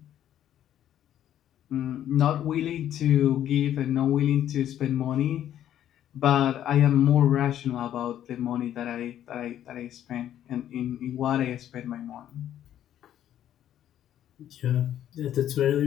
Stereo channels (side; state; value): right; quieter; 11.1 dB